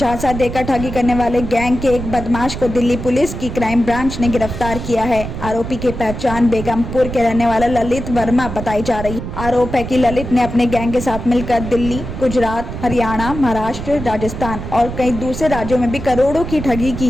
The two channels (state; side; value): noise; right; rumble, 8 dB below the sound